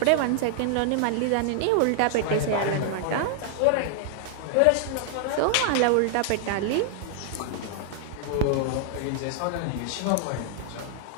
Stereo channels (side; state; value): both; different; correlation 0.00